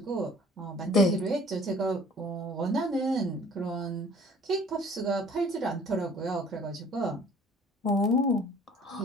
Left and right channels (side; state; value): both; normal; correlation 0.52